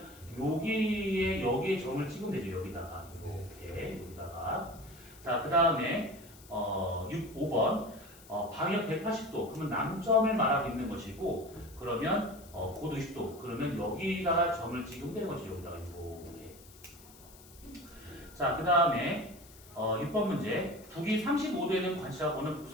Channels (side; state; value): left; noise; hiss, 22 dB below the sound